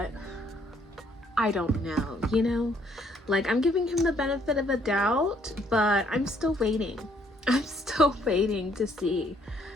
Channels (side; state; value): both; normal; correlation 0.67